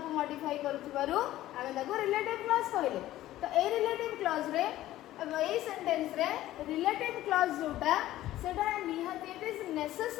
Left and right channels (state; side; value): quieter; right; 14.7 dB